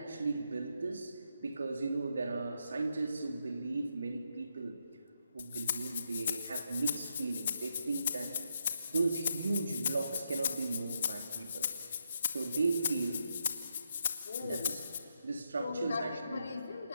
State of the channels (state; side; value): inverted; both; correlation -0.80